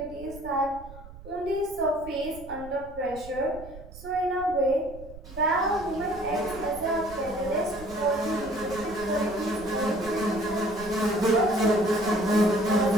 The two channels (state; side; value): noise; right; rumble, 17 dB below the sound